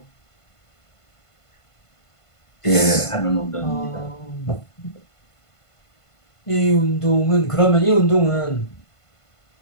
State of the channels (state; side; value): late; right; 1.5 ms